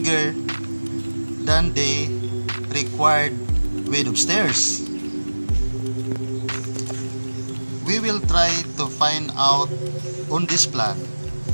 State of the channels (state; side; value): inverted; both; correlation -1.00